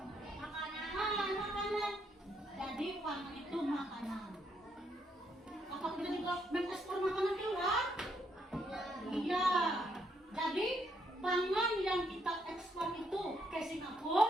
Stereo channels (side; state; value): both; normal; correlation 0.74